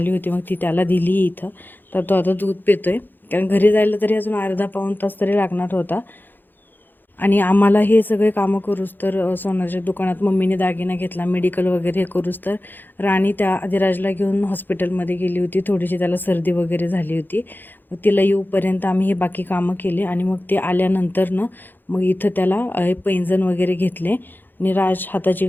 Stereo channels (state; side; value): late; right; 0.091 ms